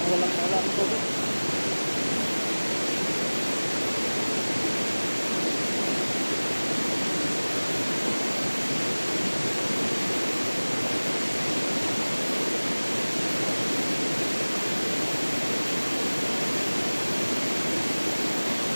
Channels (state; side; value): inverted; both; correlation -1.00